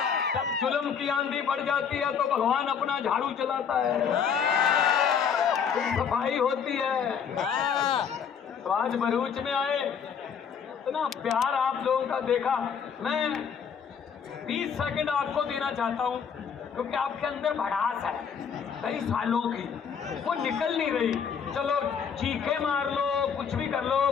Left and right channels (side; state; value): right; quieter; 7.1 dB